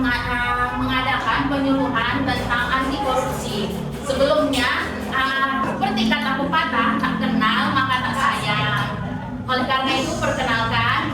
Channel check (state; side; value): identical; both; correlation 1.00